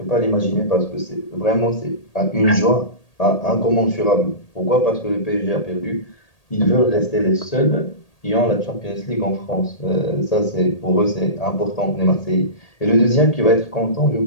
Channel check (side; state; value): right; late; 1.8 ms